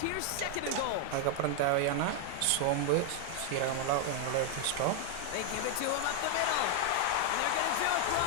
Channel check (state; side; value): different; both; correlation 0.00